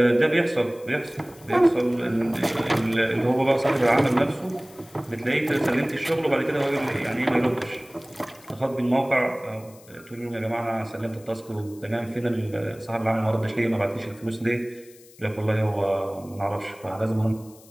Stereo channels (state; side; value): noise; left; hiss, 24 dB below the sound